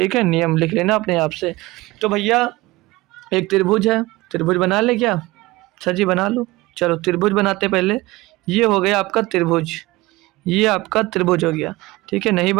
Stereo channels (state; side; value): quieter; left; 20.4 dB